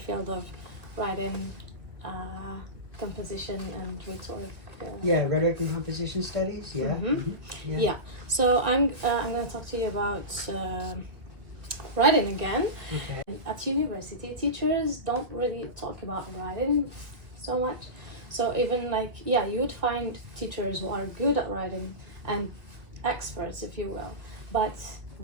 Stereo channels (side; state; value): left; late; 1.8 ms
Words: of writing, composition and rhetoric. Rhetoric and composition studies, Yeah. So I'm going to talk to you about writing again. Okay. At university, teachers don't really talk about writing so much. So even you would find teachers who are good at writing and experts, if you will, but